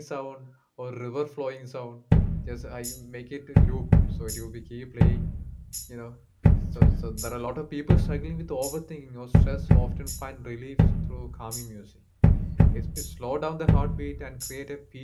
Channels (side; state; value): both; identical; correlation 1.00